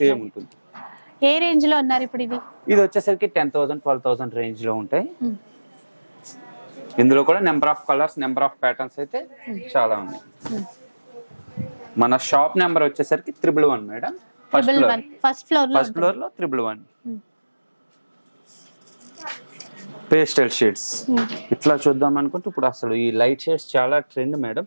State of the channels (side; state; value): both; inverted; correlation -1.00